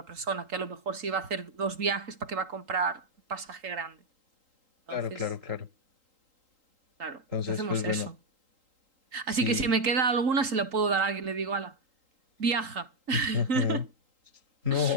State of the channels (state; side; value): late; left; 3.8 ms